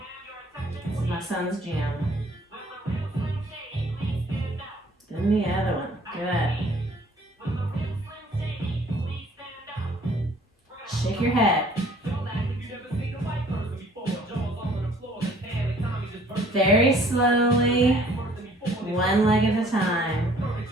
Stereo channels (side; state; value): both; normal; correlation 0.56